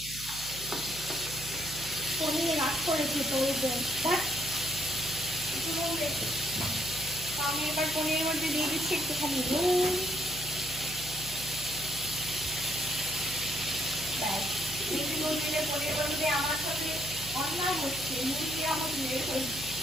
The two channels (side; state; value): right; noise; hum, 14 dB below the sound